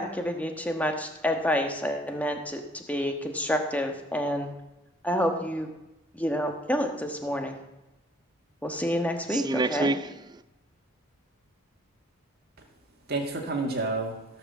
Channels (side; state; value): both; normal; correlation 0.58